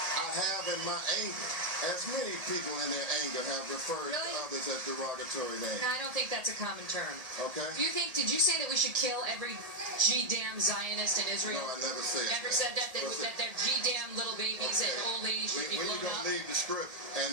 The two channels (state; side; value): late; left; 1.8 ms